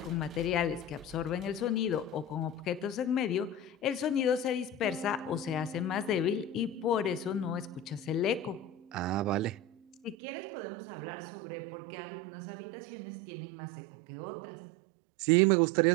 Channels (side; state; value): left; drops out; at 10.2 s